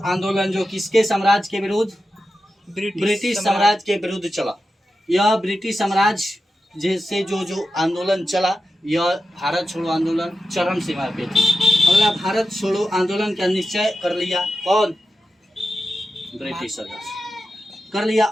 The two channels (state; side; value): normal; both; correlation 0.91